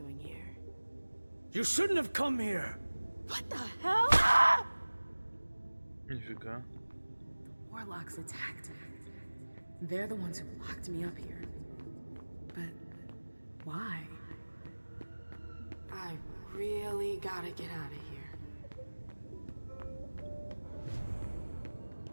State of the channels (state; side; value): inverted; both; correlation -1.00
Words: here? You shouldn't have come here! What the hell? Ah! Нифига. Warlocks attacked me. They're the ones who locked me up here. But why? I really gotta get out of here.